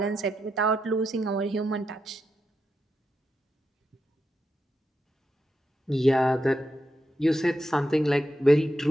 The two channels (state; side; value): normal; both; correlation 0.85